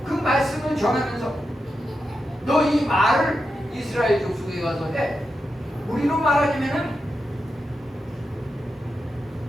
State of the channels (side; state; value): both; normal; correlation 0.88